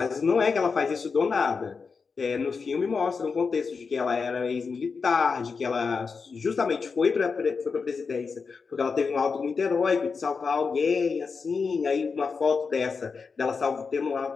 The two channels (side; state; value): right; quieter; 5.1 dB